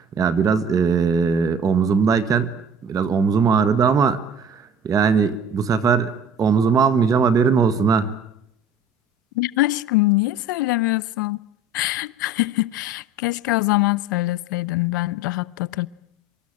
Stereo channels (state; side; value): normal; both; correlation 0.43